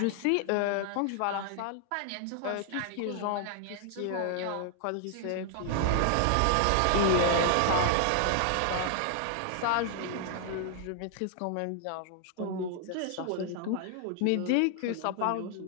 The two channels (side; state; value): both; different; correlation 0.00